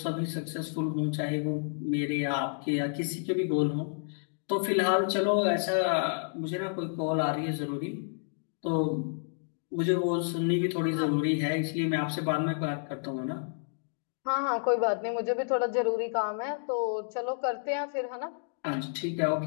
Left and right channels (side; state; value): right; silent; digital silence